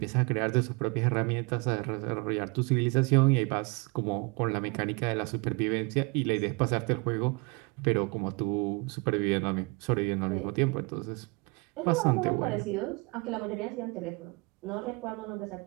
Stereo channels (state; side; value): quieter; left; 29.3 dB